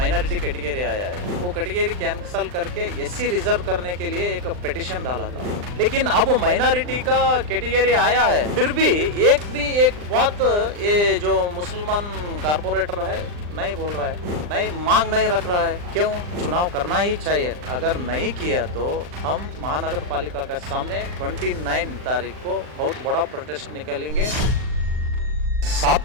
कैटेगरी आया है वो कैटेगरी कैंसल करके एससी रिजर्व करने के लिए एक पिटिशन डाला था। लेकिन अब माइनॉरिटी का कैटेगरी आया है फिर भी एक बात ये जो मुसलमान कारपोरेटर है नहीं बोल रहा है, नहीं मांग नहीं रख रहा है। क्यों? चुनाव करना ही चाहिए। अगर नहीं किया तो हम महानगर पालिका के सामने 29 तारीख को बहुत बड़ा प्रोटेस्ट निकालेंगे। 7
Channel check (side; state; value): left; late; 39 ms